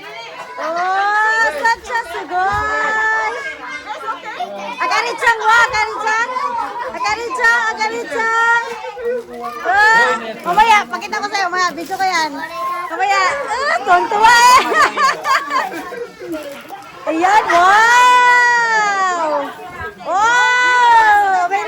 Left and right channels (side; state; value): both; identical; correlation 1.00